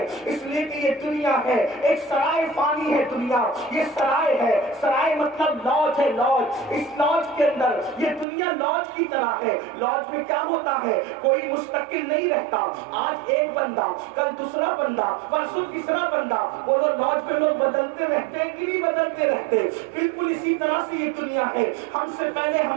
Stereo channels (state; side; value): drops out; left; at 8.2 s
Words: اس لیے کہ یہ دنیا ہے ایک سرائے فانی ہے. دنیا یہ سرائے ہے, سرائے مطلب لاج ہے. لاج, اس لاج کے اندر یہ دنیا لاج کی طرح ہے. لاج میں کیا ہوتا ہے, کوئی مستقل نہیں رہتا. آج ایک بندہ, کل دوسرا بندہ, پرسوں تیسرا بندہ. وہ لاج میں لوگ بدلتے رہتے ہیں کہ نہیں بدلتے رہتے. بالکل اسی طرح سے یہ دنیا ہے. ہم سے پہلے